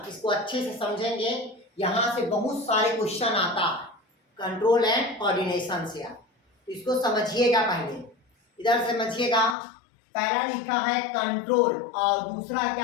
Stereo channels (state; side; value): drops out; right; at 9.6 s